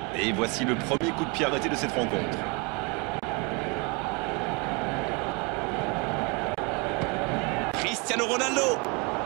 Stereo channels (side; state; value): left; quieter; 30.9 dB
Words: Et voici le premier coup de pied arrêté de cette rencontre. Cristiano Ronaldo.